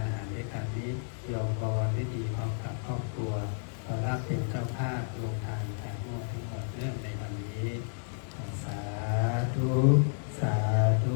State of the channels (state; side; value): silent; right; 57 dB below the other